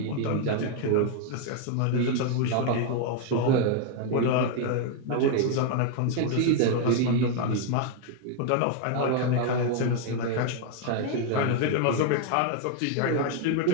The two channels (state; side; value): different; both; correlation 0.00